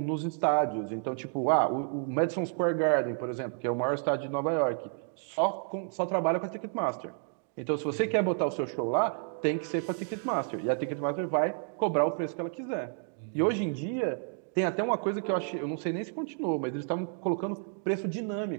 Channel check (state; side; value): silent; left; 57 dB below the other